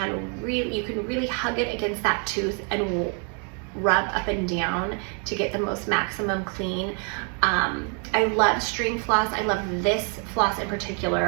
you can really hug it against that tooth and rub up and down to get the most maximum clean. I love string floss. I love this floss in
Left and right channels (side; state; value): left; quieter; 39.3 dB